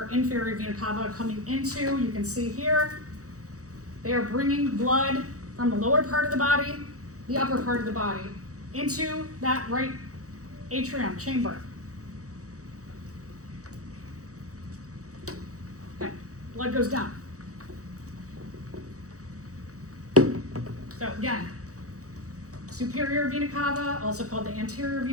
inferior vena cava coming into, you can see here, they are bringing blood from the lower part of the body, the upper part of the body, into that right atrium chamber. Okay, blood goes down. So again, superior vena cava, also called the anterior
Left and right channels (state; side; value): late; left; 0.66 ms